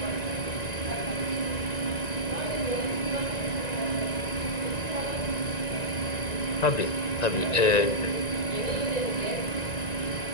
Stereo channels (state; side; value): late; right; 1.9 ms